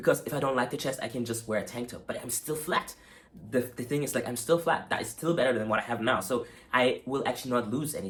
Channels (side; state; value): both; identical; correlation 1.00